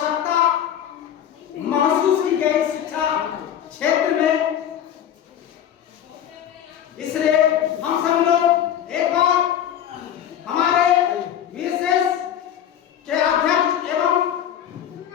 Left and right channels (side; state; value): right; quieter; 10.0 dB